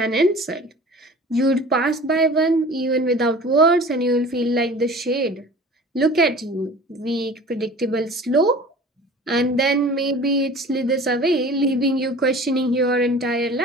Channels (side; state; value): both; normal; correlation 0.42